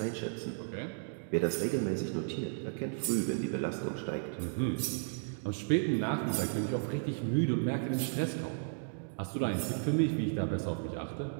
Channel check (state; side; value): silent; left; digital silence